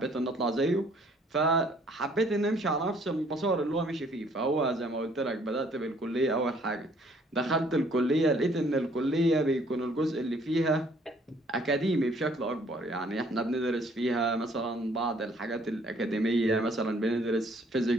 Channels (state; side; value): normal; both; correlation 0.61